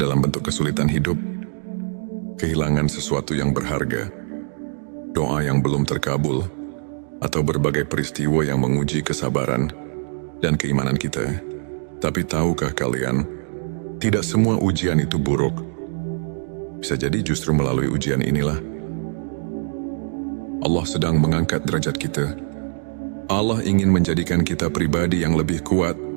bentuk kesulitan hidup, kehilangan sesuatu yang berharga, doa yang belum terkabul, atau berbagai peristiwa yang menguji kesabaran dan keimanan kita. Tapi tahukah kalian, tidak semua ujian itu buruk. Bisa jadi justru melalui ujian inilah Allah sedang mengangkat derajat kita. Allah ingin menjadikan kita pribadi yang lebih kuat,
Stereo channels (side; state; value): left; silent; 59 dB below the other